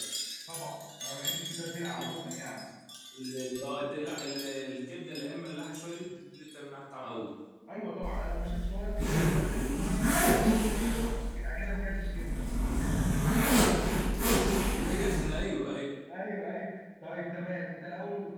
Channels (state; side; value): identical; both; correlation 1.00